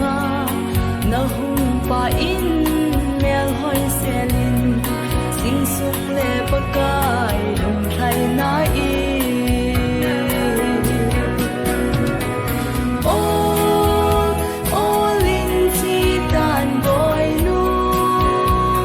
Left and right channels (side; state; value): both; identical; correlation 1.00